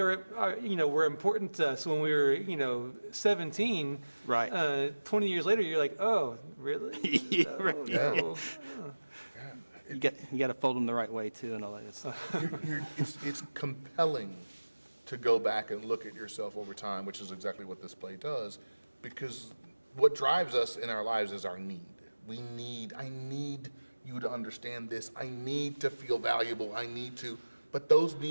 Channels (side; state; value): both; inverted; correlation -1.00